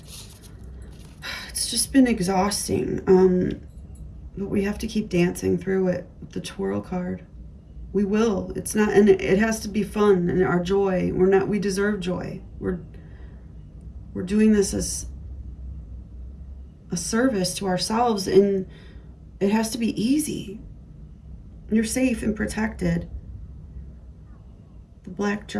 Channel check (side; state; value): both; identical; correlation 1.00